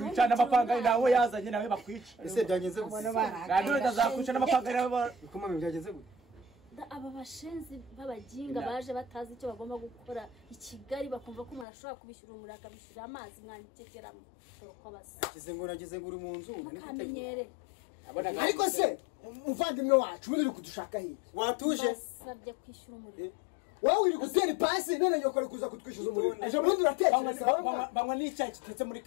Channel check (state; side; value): drops out; right; at 11.7 s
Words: n'amapanga nawe yazanye nawe bakwica ese byagenze gute Landlord azakwica n'amapanga nawe bikomeye byagenze gute aba bashenzi b'abaginga baje batazi icyo bagomba gukora i Kigali bakumva ko umuntu ashobora kubishyura umuriro akabishyura amazi mwantekeramo uko basa nagize ngo uri mu nzu mukamenyere ariko se umuvandimwe wacu uri kudushaka hirya watuje basabye kwishyura umuriro wowe uri gutera ipasi none nyoko ari kuza kutwishyuza umuriro ejo bundi uratekereza banywa n'icyayi kitetse muri